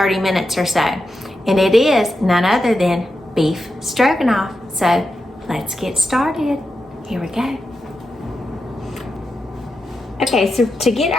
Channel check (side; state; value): both; normal; correlation 0.88